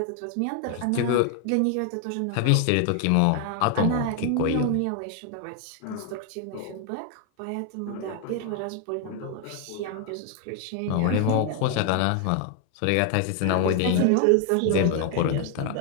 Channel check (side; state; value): both; different; correlation 0.00